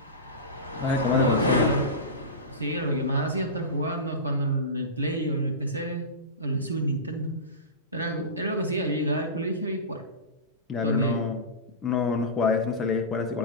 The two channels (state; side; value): normal; both; correlation -0.20